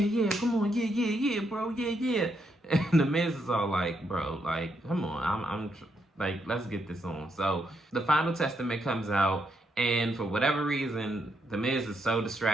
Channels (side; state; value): both; normal; correlation 0.78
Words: come on, yeah, bro, yeah. And The Miz is all like, bro, like, come on, I'm like, let's get this on. So the Final Testament comes out, and for whatever reason, The Miz is so